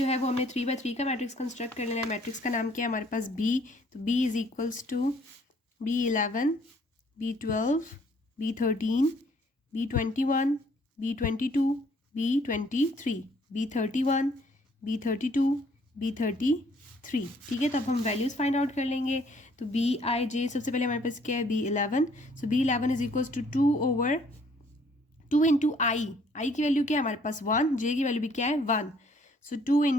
है वो हमने 3/3 का मैट्रिक्स कंस्ट्रक्ट कर लेना है। मैट्रिक्स का नाम क्या है हमारे पास B, तो B is equals to B11, B12, B13, B21, B22, B23, B31, B32, B33, ठीक है। तो अब हम वैल्यूज़ फाइंड आउट कर लेंगे। तो Bij सबसे पहले हमारे पास क्या है B11, so B11 is equals to 2 into I की वैल्यू क्या है हमारे पास 1, जे की वैल्यू भी क्या है 1, सो 2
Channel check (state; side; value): normal; both; correlation 0.62